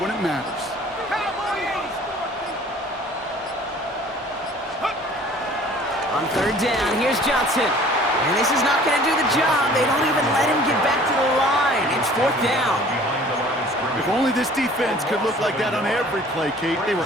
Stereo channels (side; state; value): both; normal; correlation 0.50